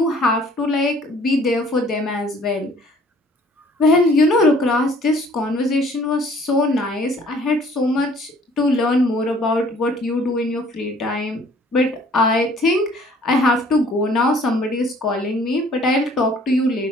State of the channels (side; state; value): both; normal; correlation 0.56